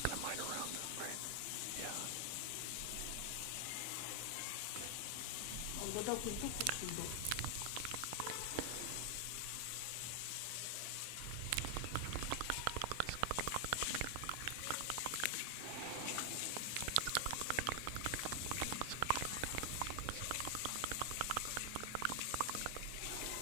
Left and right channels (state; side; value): different; both; correlation 0.00